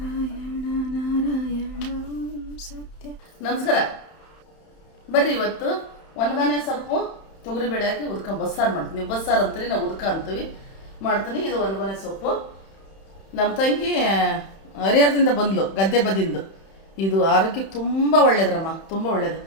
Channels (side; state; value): right; late; 31 ms